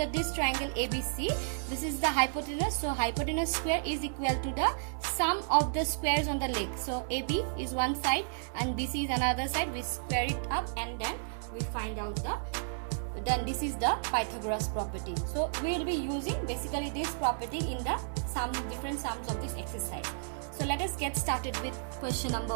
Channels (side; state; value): left; silent; digital silence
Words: this triangle ABC, this is the hypotenuse. So hypotenuse square is equal to the sum of the squares on the legs. So AB is one side and BC is another side. We square it up, and then we find out then this is the Pythagoras property. So we will be using basically this property in the different sums of this exercise. So let us get started with question